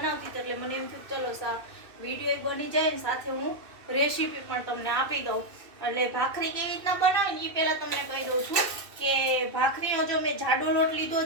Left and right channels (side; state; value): left; late; 2.6 ms